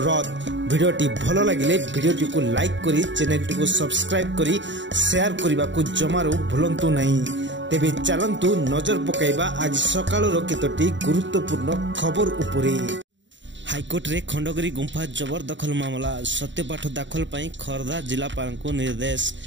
भिडियोटी भल लगिले भिडियोटी को लाइक करी चैनल को सब्सक्राइब करी शेयर करने को जमारू भूलंतु नहीं। तेबे चलतु नजर पकाइबा आज सकाळर केतोटी गुरुत्वपूर्ण खबर उपरे। हाईकोर्ट रे खंडगिरी गुंफा जबरदखल मामला सत्यपाठ दाखल पाई खर्दा जिलापाल को निर्देश।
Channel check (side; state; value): left; late; 0.54 ms